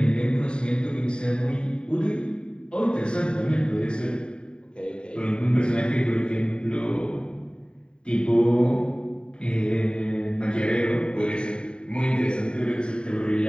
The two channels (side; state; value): right; late; 0.050 ms